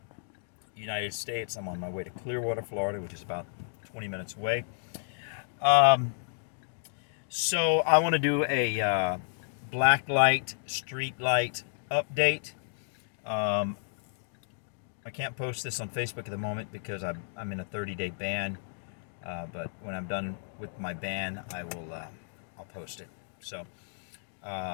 United States. I'm on my way to Clearwater, Florida, which is about 20 minutes away. So I want to do a Blacklight Streetlight update. I can't post this on Facebook at the moment because I'm in a 30-day ban. But when I'm done with my ban, I'll post it. So,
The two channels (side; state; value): right; silent; digital silence